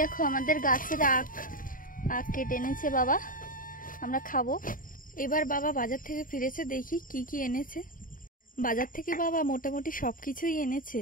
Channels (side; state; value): right; late; 0.40 ms